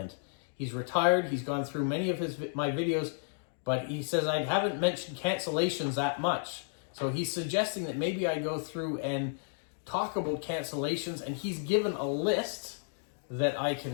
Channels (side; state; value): right; silent; digital silence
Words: He's retired, he's gone through many of my videos, but he says I haven't mentioned cancellations that much. So he's suggesting that maybe I go through and talk about cancellations, and he's given a list that I